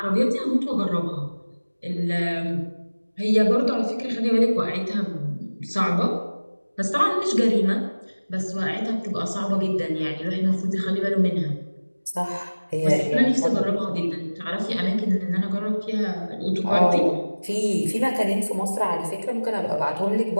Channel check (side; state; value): both; inverted; correlation -1.00